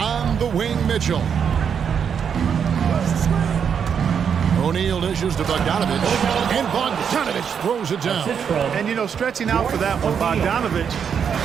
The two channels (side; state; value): left; quieter; 7.4 dB